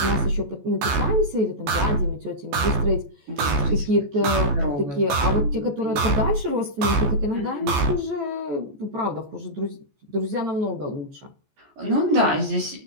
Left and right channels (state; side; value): late; left; 14 ms